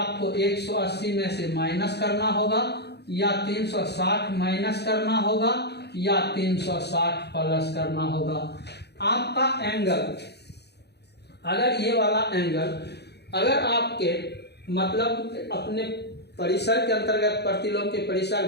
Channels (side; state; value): right; late; 0.48 ms